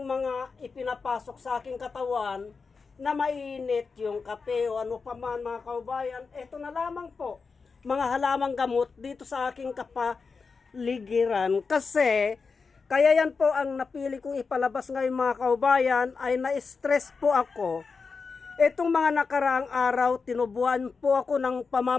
mga ipinapasok sa aking katawan na mainit yung kape o ano pa man mga kaubayan. Ito na lamang po, mga halamang gamot dito sa aking kapaligiran. Kasi, kaya yan po ang napili kong ipalabas ngayon mga kaubayan ay na-stress po ako. Itong mga nakaraang araw, tinubuan po ako ng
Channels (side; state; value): right; quieter; 4.8 dB